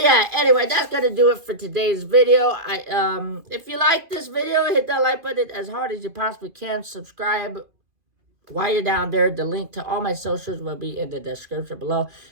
yeah, anyway, that's going to do it for today's video. If you like this video, hit that like button as hard as you possibly can. Subscribe while you're down there. The link to all my socials will be in the description below.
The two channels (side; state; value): left; late; 2.5 ms